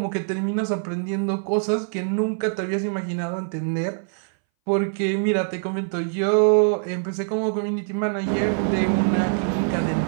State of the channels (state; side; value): silent; left; 61 dB below the other